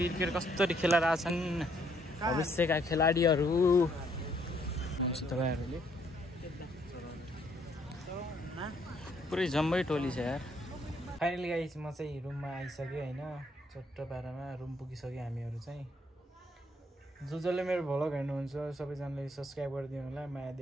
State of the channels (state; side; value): normal; both; correlation 0.68